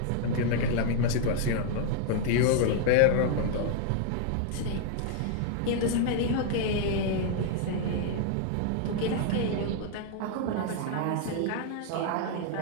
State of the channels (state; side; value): different; both; correlation 0.00